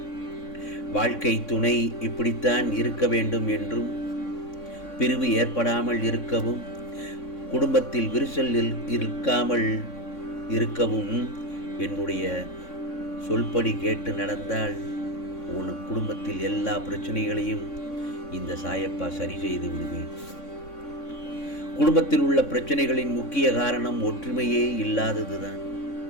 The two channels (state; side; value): late; right; 3.6 ms